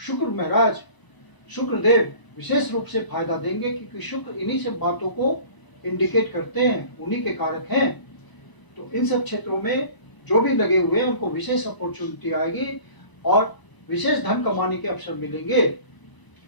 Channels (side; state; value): right; late; 1.0 ms